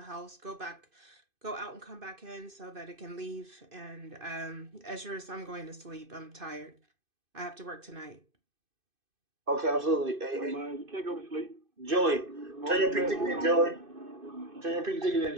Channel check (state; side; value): late; left; 2.5 ms